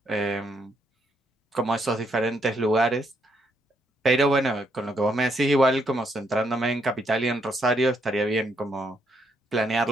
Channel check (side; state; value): both; normal; correlation 0.75